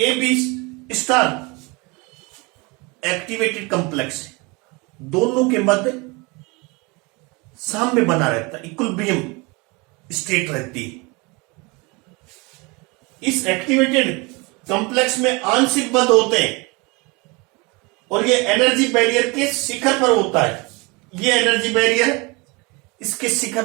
B star activated complex है, दोनों के मध्य साम्य बना रहता है, इक्विलिब्रियम स्टेट रहती है। इस एक्टिवेटेड कॉम्प्लेक्स में आंशिक बंध होते हैं और ये एनर्जी बैरियर के शिखर पर होता है। ये एनर्जी बैरियर इसके शिखर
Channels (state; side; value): quieter; left; 27.2 dB